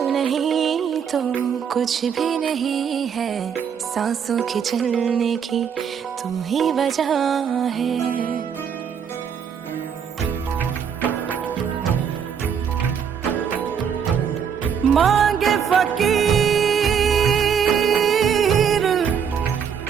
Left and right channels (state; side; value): quieter; left; 7.4 dB